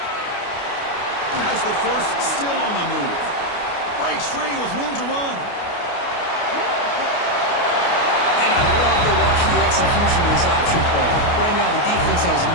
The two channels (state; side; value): late; right; 29 ms